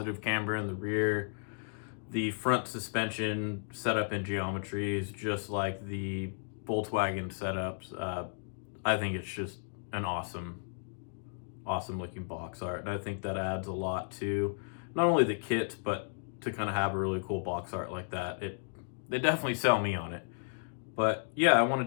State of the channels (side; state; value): right; silent; digital silence